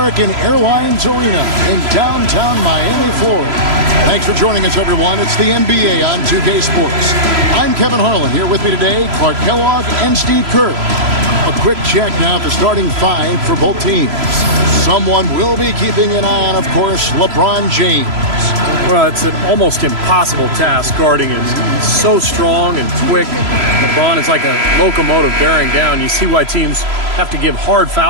Airlines Arena in downtown Miami, Florida. Thanks for joining us, everyone. It's the NBA on 2K Sports. I'm Kevin Harlan. Here with me today, Clark Kellogg and Steve Kerr. A quick check now at the starting five for both teams. Someone will be keeping an eye on, of course, LeBron James. Well, it's an almost impossible task guarding him. He's so strong and quick. LeBron is like a locomotive bearing down. You see why teams have to give hard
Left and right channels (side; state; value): left; late; 3.0 ms